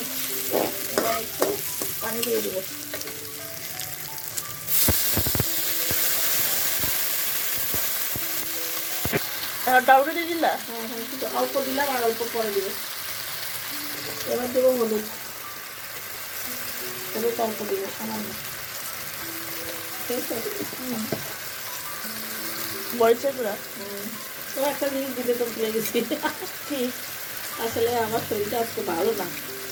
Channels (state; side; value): identical; both; correlation 1.00